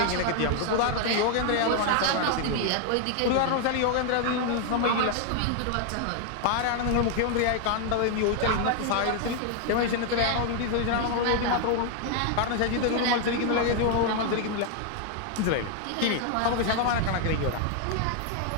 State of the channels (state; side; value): different; both; correlation 0.00